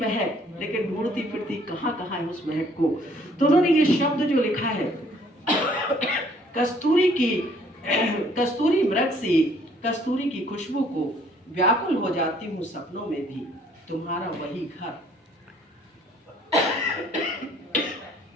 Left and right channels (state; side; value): normal; both; correlation 0.61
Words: लेकिन ढूंढती फिरती कहाँ कहाँ है उस महक को। तो उन्होंने ये शब्द जो लिखा है, कस्तूरी मृग सी, कस्तूरी की खुशबू को व्याकुल हो जाती हूँ सपनों में भी, तुम्हारा वही घर,